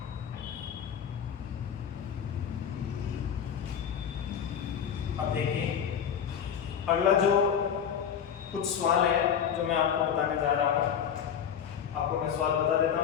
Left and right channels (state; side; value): quieter; right; 8.2 dB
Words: अब देखिए अगला जो कुछ सवाल है जो मैं आपको बताने जा रहा हूँ, आपको मैं सवाल बता देता